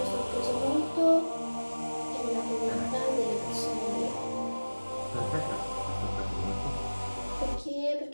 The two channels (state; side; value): inverted; both; correlation -1.00